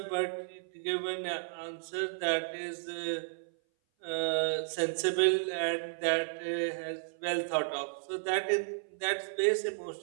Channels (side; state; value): left; silent; 56 dB below the other